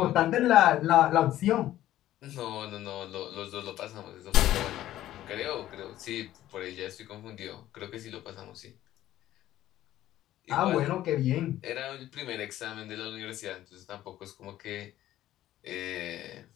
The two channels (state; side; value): quieter; right; 13.7 dB